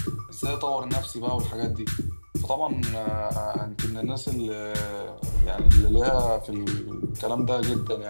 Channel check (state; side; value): inverted; both; correlation -1.00